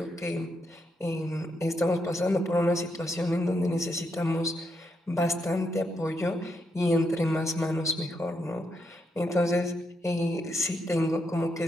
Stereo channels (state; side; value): normal; both; correlation 0.80